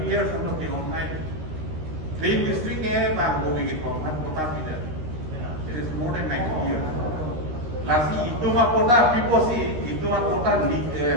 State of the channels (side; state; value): left; late; 13 ms